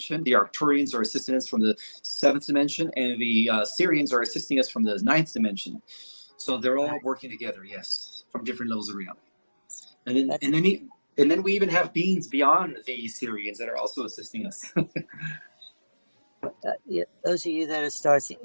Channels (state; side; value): inverted; both; correlation -1.00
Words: The Arcturians are assisting us from the seventh dimension, and the Syrians are assisting us from the ninth dimension. So they're all working together, yes, from different levels of reality. And then we even have beings beyond the Syrians that are also assisting us. Those of you that are stars,